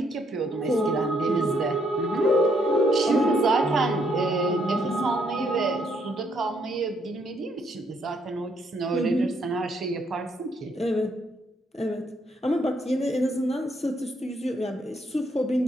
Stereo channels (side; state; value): both; normal; correlation 0.72